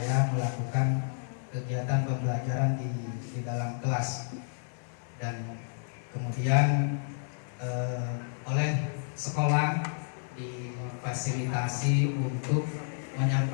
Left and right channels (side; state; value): right; silent; digital silence